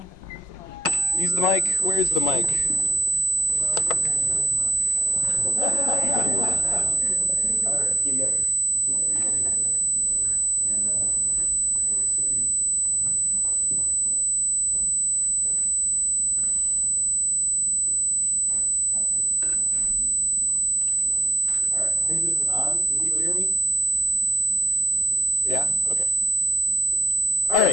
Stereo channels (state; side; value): late; left; 5.5 ms